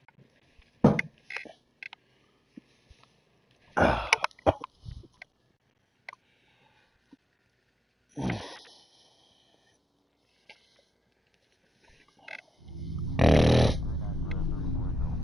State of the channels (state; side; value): normal; both; correlation 0.88